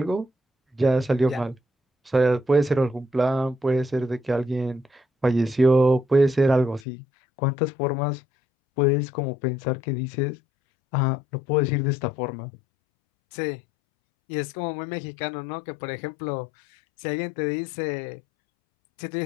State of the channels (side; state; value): right; drops out; at 6.9 s